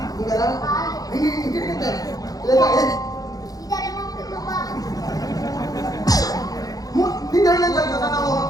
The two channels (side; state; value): right; late; 0.18 ms